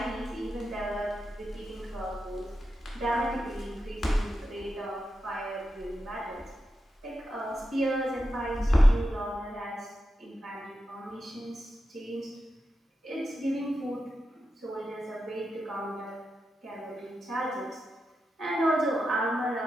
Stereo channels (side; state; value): both; normal; correlation 0.89